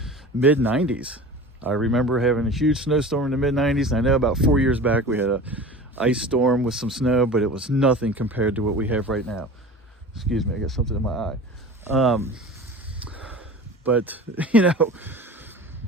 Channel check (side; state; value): both; normal; correlation 0.37